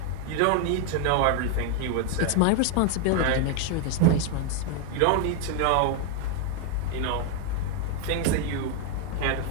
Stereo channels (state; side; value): different; both; correlation 0.01